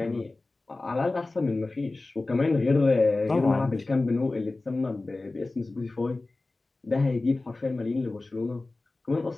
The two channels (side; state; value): right; quieter; 3.2 dB